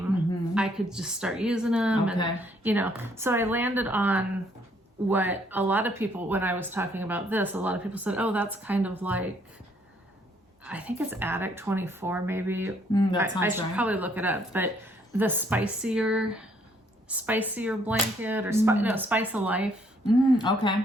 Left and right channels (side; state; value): both; normal; correlation 0.67